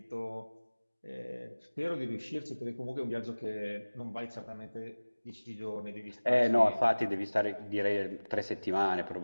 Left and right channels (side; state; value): both; inverted; correlation -1.00